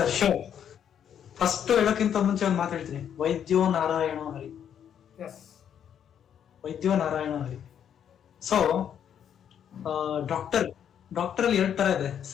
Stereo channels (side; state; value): right; quieter; 9.0 dB